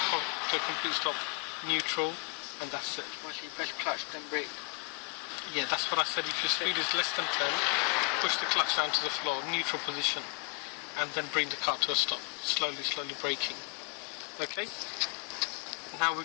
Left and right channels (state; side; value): quieter; right; 33.1 dB